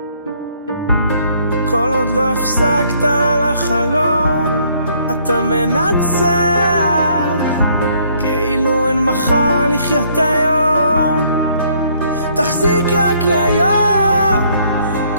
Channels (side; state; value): both; inverted; correlation -0.65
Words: כל עוד לא הפסקת על החלום, אתה מנצח, כאילו אין מחר לחיות היום. תחזיק רק להיום,